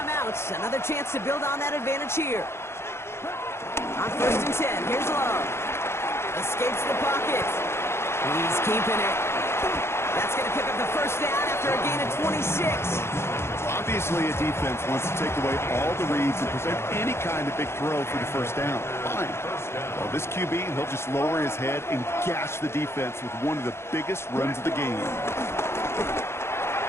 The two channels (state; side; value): late; right; 0.12 ms